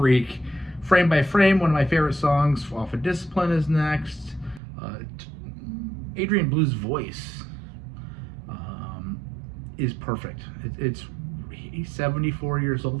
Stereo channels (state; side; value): drops out; left; at 4.6 s